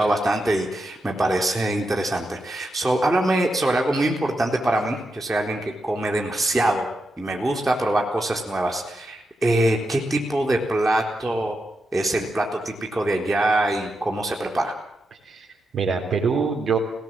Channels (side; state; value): both; normal; correlation 0.86